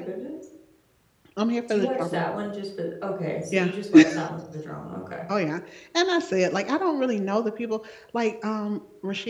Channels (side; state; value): both; identical; correlation 1.00